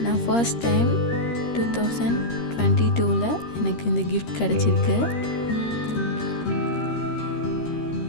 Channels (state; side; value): late; right; 13 ms